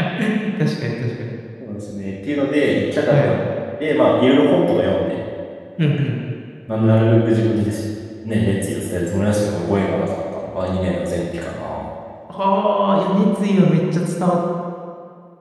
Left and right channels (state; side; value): identical; both; correlation 1.00